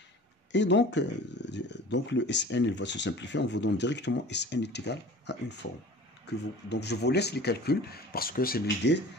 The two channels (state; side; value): normal; both; correlation 0.41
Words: Et donc le Sn il va se simplifier. On vous donne directement Sn est égal à une forme. Donc je vous laisse les calculs parce que c'est l'idée,